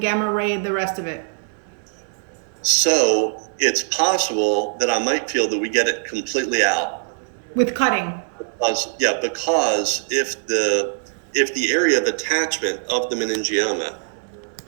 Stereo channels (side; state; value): left; silent; 62 dB below the other